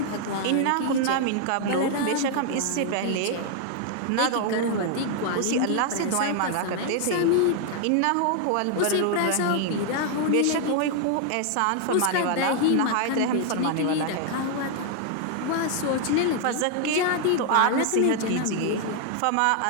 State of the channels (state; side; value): different; both; correlation 0.00